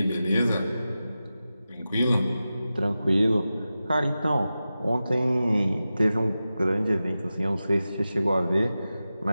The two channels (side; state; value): both; inverted; correlation -0.93